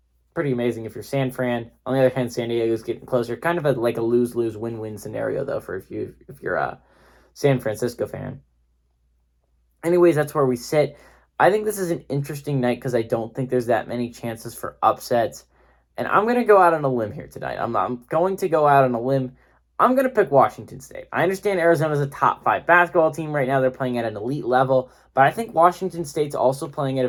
pretty amazing if you're San Fran. On the other hand, San Diego's getting closer. Kind of like a lose-lose, win-win scenario, though, for if you're a San Francisco fan. Anyways, that's where we sit. I think this is an interesting night because I don't think there's that many chances for upsets. And I'm going to go out on a limb here tonight. I'm going to go out on a limb. I'm going to pick Washington State. I understand Arizona's a top 5 basketball team right now. They're playing at an elite level. But I think Washington State's also playing at a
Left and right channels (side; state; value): both; identical; correlation 1.00